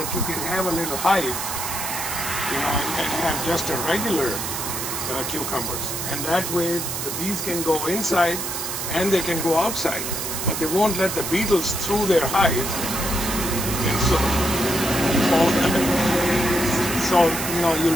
you can have a little hive, and have just a regular cucumbers. And that way the bees can go inside and they can go outside, but they won't let the beetles through their hive. And so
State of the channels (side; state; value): right; noise; hiss, 4 dB below the sound